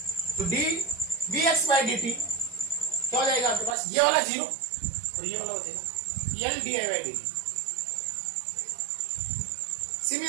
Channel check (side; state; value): left; drops out; at 3.8 s